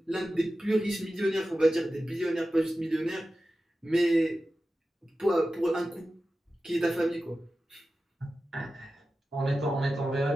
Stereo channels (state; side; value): normal; both; correlation 0.94